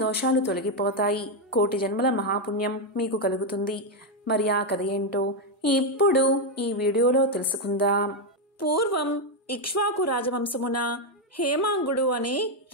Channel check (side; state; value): both; normal; correlation 0.04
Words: దోషాలు తొలగిపోతాయి, కోటి జన్మల మహాపుణ్యం మీకు కలుగుతుంది. మరి ఆ కథ ఏంటో ఇప్పుడు ఈ వీడియోలో తెలుసుకుందాం. పూర్వం ఇక్ష్వాకు రాజవంశమున హేమాంగుడు అనే